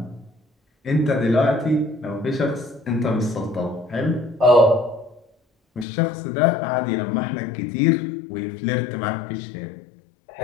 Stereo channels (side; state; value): right; drops out; at 5.9 s